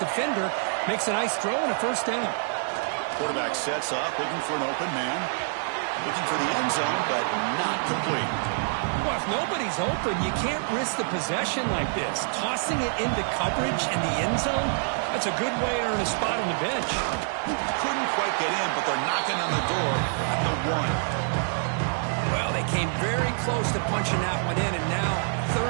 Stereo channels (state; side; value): silent; left; digital silence